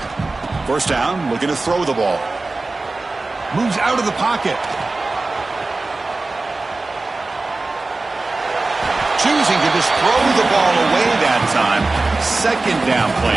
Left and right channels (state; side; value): quieter; left; 3.4 dB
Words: First down, looking to throw the ball. Moves out of the pocket. Choosing to just throw the ball away that time. Second down